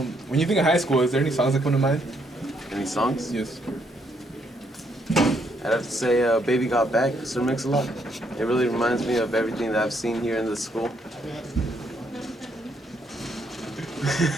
When you think of high school, is there any songs that come to mind? Any songs? Yes. I'd have to say Baby Got Back, Sir Mix-a-Lot. It really reminds me of everything that I've seen here in this school.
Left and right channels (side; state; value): both; normal; correlation 0.73